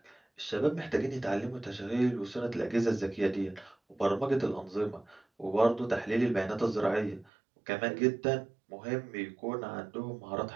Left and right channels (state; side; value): drops out; left; at 7.3 s